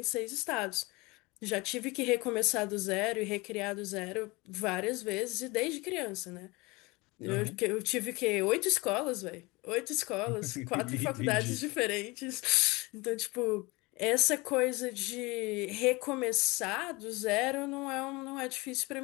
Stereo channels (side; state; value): right; quieter; 24.1 dB